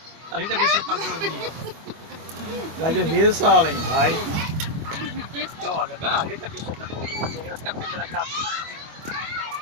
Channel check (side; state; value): left; late; 25 ms